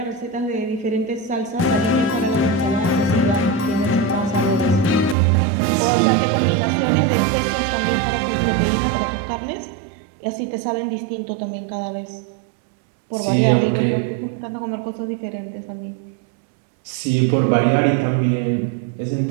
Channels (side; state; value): left; drops out; at 5.2 s